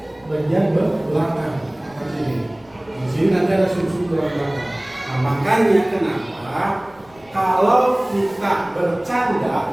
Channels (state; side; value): noise; left; rumble, 28 dB below the sound